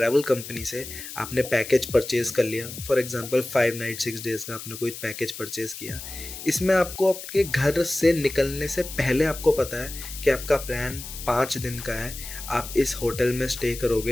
कंपनी से आपने पैकेज परचेज़ कर लिया। फॉर एग्जांपल 5 नाइट 6 डेज़ का आपने कोई पैकेज परचेज़ किया। इसमें आपको आपके घर से निकलने से पहले आपको पता है कि आपका प्लान 5 दिन का है। आप इस होटल में स्टे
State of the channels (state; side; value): noise; left; hiss, 11 dB below the sound